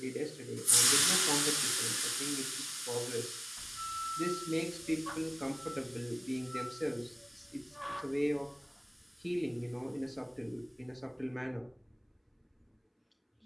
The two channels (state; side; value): identical; both; correlation 1.00